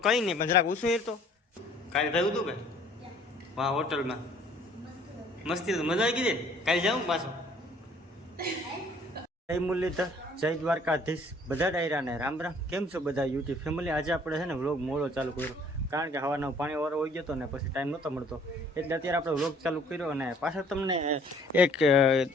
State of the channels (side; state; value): both; normal; correlation 0.57